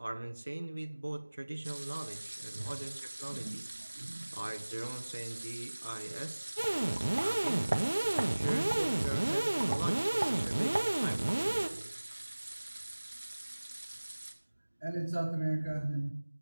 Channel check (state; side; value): inverted; both; correlation -1.00